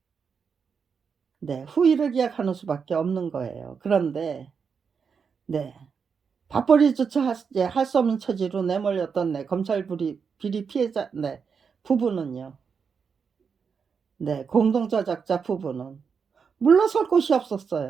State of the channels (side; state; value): left; quieter; 6.0 dB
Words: 네, 후위를 기약하는 수밖에 없는 거예요. 그런데 네, 밥벌이조차 할 수 없는 처지로 내몰렸던 네, 검찰 비리 피해자 네, 부부는요. 네, 공동저작자 부부는 물러설 곳이